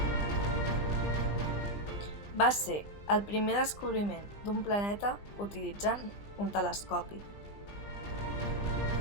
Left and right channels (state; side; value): late; right; 20 ms